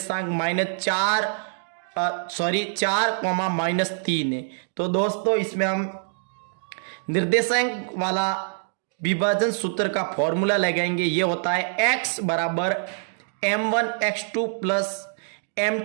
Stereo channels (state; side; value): silent; left; digital silence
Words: -4,-3 है। तो दोस्तों इसमें हम निर्देशांक वाला विभाजन सूत्र का फॉर्मूला लगाएंगे। ये होता है x बराबर m1x2 प्लस